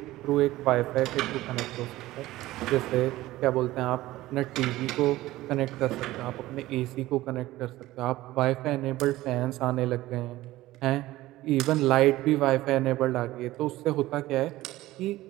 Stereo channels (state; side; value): quieter; left; 16.9 dB